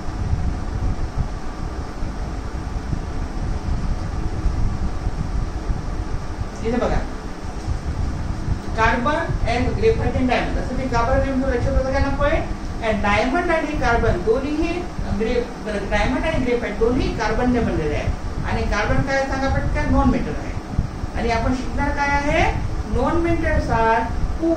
इथे बघा, carbon and graphite and diamond. असं ते कार्बन नेमकं लक्षात होतं का ना पॉईंट? अँड डायमंड आणि कार्बन दोन्हीही डायमंड आणि ग्रेफाइट दोन्ही कार्बनने बनलेले आहे. आणि कार्बन काय सांगा पटकन? नॉन मेटल आहे. आणि आपण शिकणार काय आहे? Non metals are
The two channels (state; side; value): identical; both; correlation 1.00